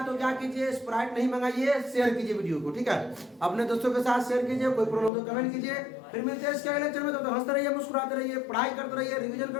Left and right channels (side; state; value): right; drops out; at 5.1 s